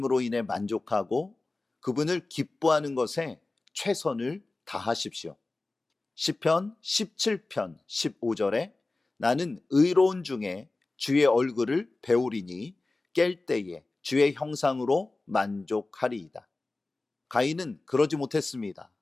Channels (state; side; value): quieter; right; 3.2 dB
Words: 인해 만족하고 그분을 기뻐하는 것에 최선을 다하십시오. 시편 17편 15절에 나는 의로운 중에 주의 얼굴을 배우리니 깰 때에 주의 형상으로 만족하리이다. 가인은 그러지 못했습니다.